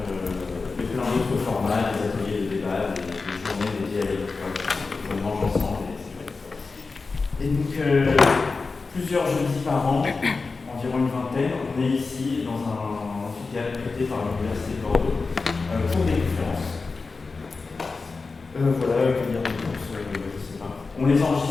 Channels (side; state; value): right; quieter; 4.2 dB